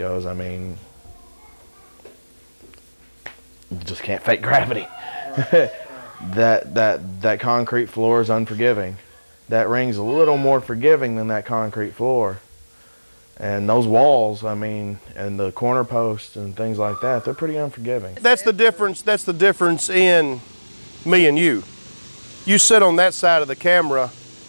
I mean, you just can't fake gravity. That concrete floor is unforgiving. That ring's a little more forgiving than that concrete floor. And those walls, I mean, and the corner posts and things like that, they're pretty unforgiving. That's the difference in me and you. you sit on that side of the camera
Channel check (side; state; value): both; inverted; correlation -1.00